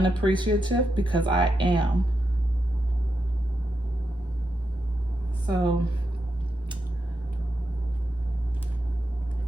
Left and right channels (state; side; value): normal; both; correlation 0.85